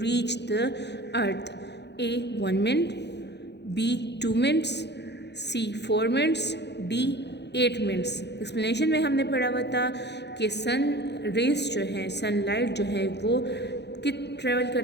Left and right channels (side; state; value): right; late; 0.50 ms